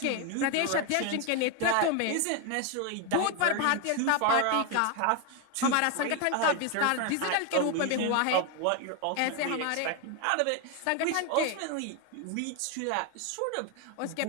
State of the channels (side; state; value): both; different; correlation 0.01